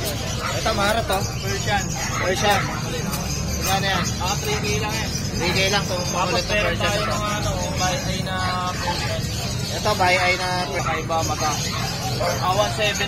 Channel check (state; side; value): identical; both; correlation 1.00